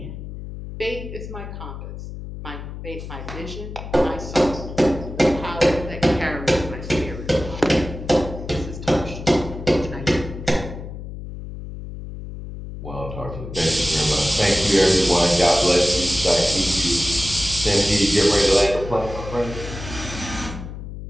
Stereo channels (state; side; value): noise; left; hum, 10 dB below the sound